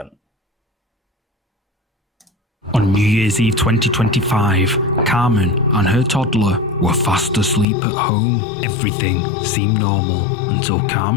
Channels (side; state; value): right; drops out; at 7.7 s